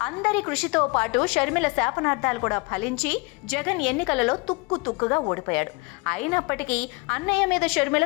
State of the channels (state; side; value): quieter; right; 27.5 dB